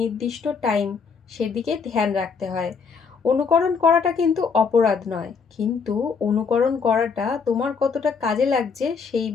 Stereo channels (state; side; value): quieter; right; 5.5 dB